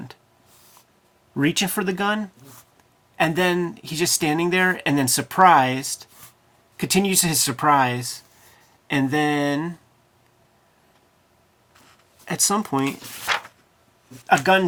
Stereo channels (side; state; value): both; identical; correlation 1.00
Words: reaching for the gun, and then he's just standing there, and then surprised, continues his surprise, and then at some point, a gun